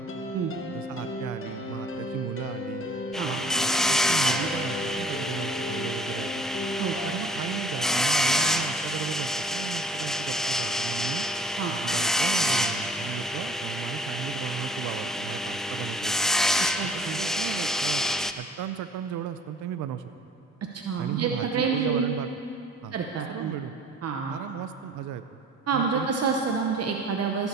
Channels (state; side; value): normal; both; correlation 0.52